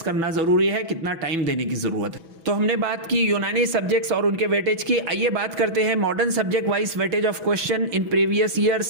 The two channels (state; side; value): late; left; 6.1 ms